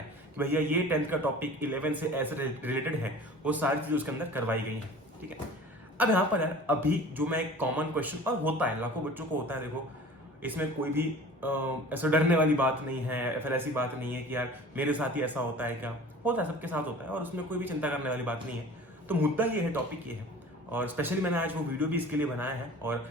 कि भैया ये 10th का टॉपिक 11 से ऐसे रिलेटेड है, वो सारी चीजें उसके अंदर करवाई गई हैं, ठीक है। अब यहाँ पर यार अभी जो मैं एक कॉमन क्वेश्चन, और होता है लाखों बच्चों को होता है, देखो इसमें कोई भी ऐसा डरने वाली बात नहीं है, या फिर ऐसी बात नहीं है कि यार मेरे साथ ही ऐसा होता है, क्या होता है, सबके साथ होता है, और उसमें कोई भी चिंता करने वाली बात नहीं है। तो मुद्दा ये है, टॉपिक ये है, और स्पेशली मैंने आज वो वीडियो भी इसके लिए बनाया है, और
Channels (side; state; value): both; normal; correlation 0.43